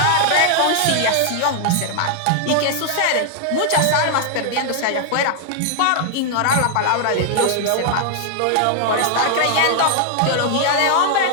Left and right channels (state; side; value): different; both; correlation -0.01